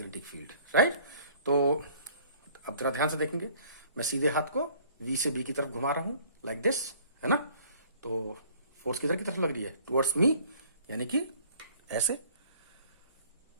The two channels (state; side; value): inverted; both; correlation -0.54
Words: फील्ड, राइट। तो अब जरा ध्यान से देखेंगे, मैं सीधे हाथ को V से B की तरफ घुमा रहा हूं लाइक दिस, है ना। तो फोर्स किधर की तरफ लग रही है, टुवर्ड्स मी, यानी कि ऐसे,